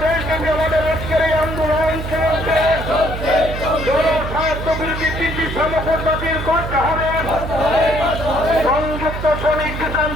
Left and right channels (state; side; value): noise; right; hum, 6 dB below the sound